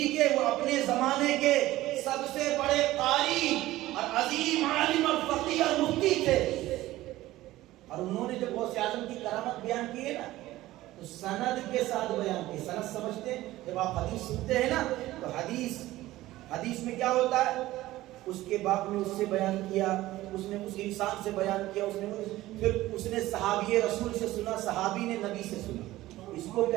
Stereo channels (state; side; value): quieter; left; 16.5 dB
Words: کے وہ اپنے زمانے کے سب سے بڑے قاری اور عظیم عالم اور فقیہ اور مفتی تھے۔ اور انہوں نے جب غوث اعظم کی کرامت بیان کی ہے نا، تو سند کے ساتھ بیان کی۔ سند سمجھتے ہیں؟ جب آپ حدیث سنتے ہیں نا، تو حدیث میں کیا ہوتا ہے؟ اس کے باپ نے اس سے بیان کیا، اس نے اس انسان سے بیان کیا، پھر اس نے صحابی رسول سے سنا، صحابی نے نبی سے سنا، اس کو